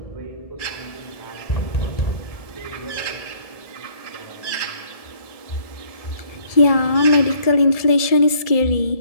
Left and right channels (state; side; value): late; right; 1.7 ms